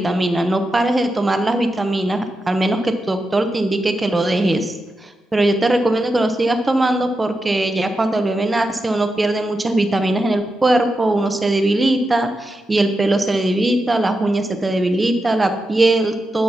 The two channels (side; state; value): both; normal; correlation 0.88